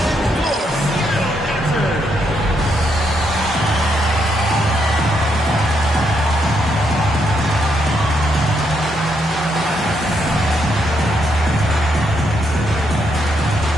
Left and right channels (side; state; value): both; normal; correlation 0.77